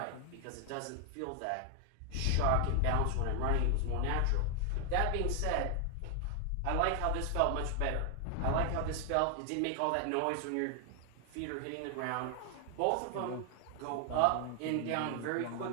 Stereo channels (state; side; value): different; both; correlation 0.00